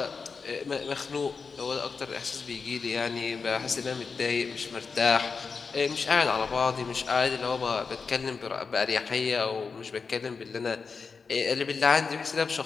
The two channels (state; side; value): quieter; right; 5.1 dB